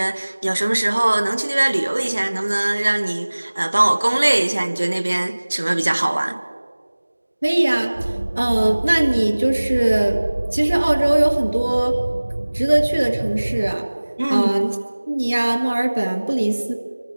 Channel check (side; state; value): both; inverted; correlation -1.00